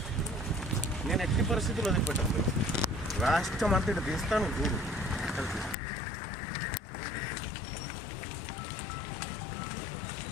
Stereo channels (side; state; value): right; drops out; at 5.8 s